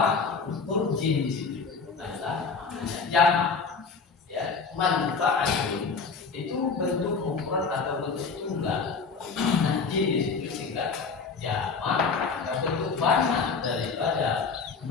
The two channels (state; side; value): quieter; right; 5.0 dB